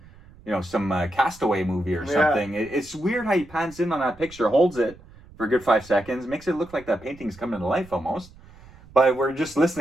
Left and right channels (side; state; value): right; noise; rumble, 22 dB below the sound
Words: some Castaway movie or something. Yeah. It's weird how he pans in on that picture, holds it for a good 5 seconds, makes it look like that painting's coming to life almost. But we're just